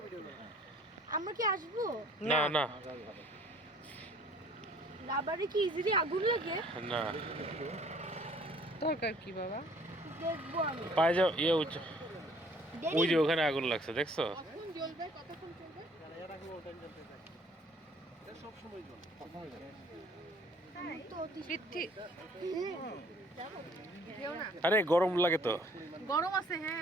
ভিডিও করেন। আমরা কি আসবো? না না রাবারে কি ইজিলি আগুন লাগে? না দরকার কি বাবা? দেখবো আমি। পায়ে যাও ইয়ে ওই দেরি। যে ওখানে আগুন লাগছে দেখছো কখন জ্বলবে? কতক্ষণ চলবে? এটা কোনো টাইম জ্বলতে থাকে। এটা সব সময় জ্বলে। তো পৃথ্বী যেও না। আরে গরম লাগে তো গরম আছে,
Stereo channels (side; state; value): both; normal; correlation 0.56